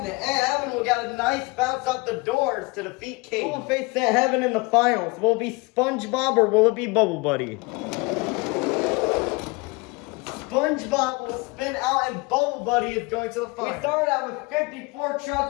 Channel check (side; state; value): right; quieter; 26.1 dB